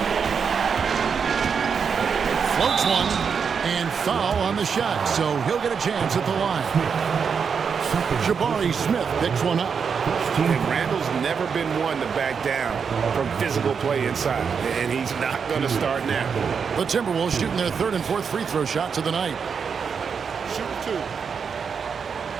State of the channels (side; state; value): left; quieter; 6.3 dB